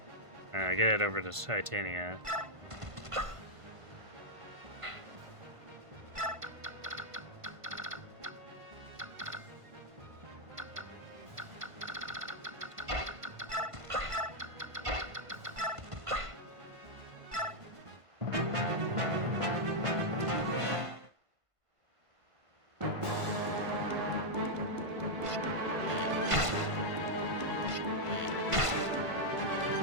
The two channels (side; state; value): left; late; 1.5 ms